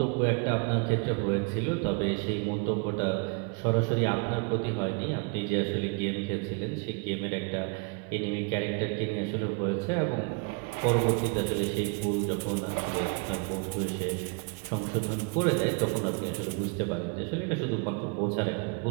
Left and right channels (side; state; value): left; quieter; 34.1 dB